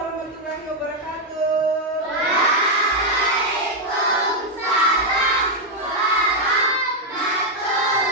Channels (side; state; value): both; normal; correlation 0.00